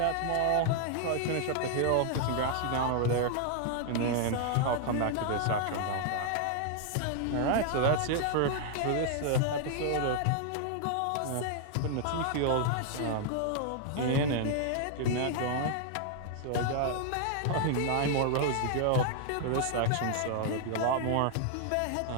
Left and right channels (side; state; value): both; different; correlation 0.00